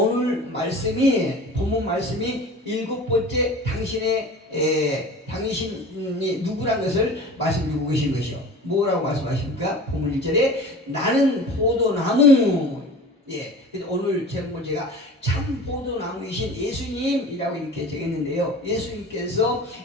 말씀이 본문 말씀이 7번째 당신이 누구란 것을 말씀해 주고 계신 것이요. 뭐라고 말씀하십니까? 본문 1절에 나는 포도나무. 그래서 오늘 제목을 제가 참 포도나무이신 예수님이라고 이렇게 적었는데요. 예수님께서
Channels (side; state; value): both; normal; correlation 0.39